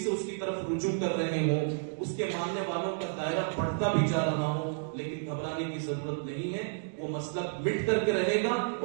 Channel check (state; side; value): silent; left; digital silence